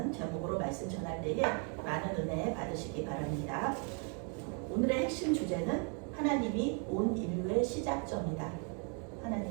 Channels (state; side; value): quieter; left; 38.4 dB